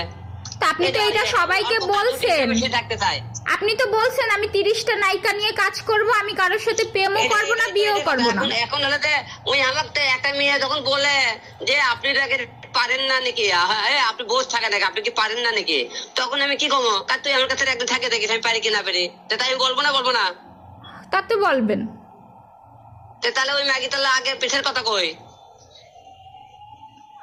তা আপনি তো এটা সবাইকে বলছেন, থাকতে চায়। আপনি তো বলছেন আমি 30টা নায়িকা নিয়ে কাজ করব, আমি কারোর সাথে প্রেমও করবো না, বিয়েও করবো না। এখন হলে ওই আমাকে একটা মেয়ে যখন বলে যে আপনি পারেন না নাকি, আপনি বসে থাকেন নাকি, আপনি কি পারেন না নাকি, তখন আমি কি কমো, কার তুই আমার কাছে একদিন থাকে দেখিস আমি পারি কি না পারি, তাই আমি বলবো না। তা তো বলবেন। তাহলে ওই ম্যাগি তাহলে আগে পিঠের কথা কই।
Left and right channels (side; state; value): both; identical; correlation 1.00